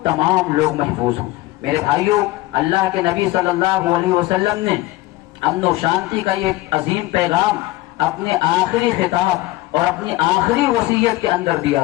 تمام لوگ محفوظ ہوں. میرے بھائیوں، اللہ کے نبی صلی اللہ علیہ وسلم نے امن و شانتی کا یہ عظیم پیغام اپنے آخری خطاب اور اپنی آخری وصیت کے اندر دیا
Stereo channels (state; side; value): quieter; right; 18.2 dB